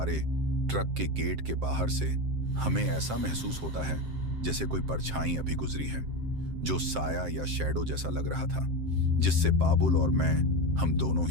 ट्रक के गेट के बाहर से हमें ऐसा महसूस होता है जैसे कोई परछाई अभी गुजरी है, जो साया या शैडो जैसा लग रहा था, जिससे बाबुल और मैं हम दोनों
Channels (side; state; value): left; late; 7.6 ms